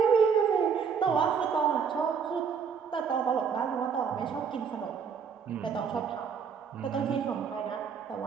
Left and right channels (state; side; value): quieter; left; 6.6 dB